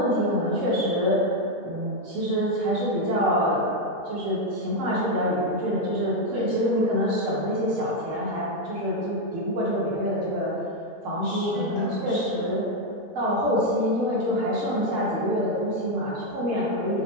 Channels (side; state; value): both; normal; correlation 0.04